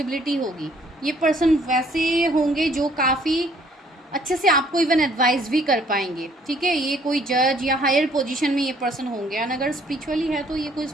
होगी। ये पर्सन वैसे होंगे जो काफ़ी अच्छे से आपको इवन एडवाइस भी कर पाएंगे। ठीक है, ये कोई जज या हायर पोजीशन में ये पर्सन होंगे, एंड अगर स्पिरिचुअली है तो ये कोई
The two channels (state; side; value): normal; both; correlation 0.62